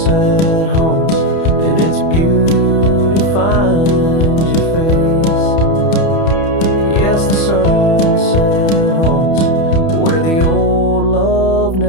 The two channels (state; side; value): late; right; 31 ms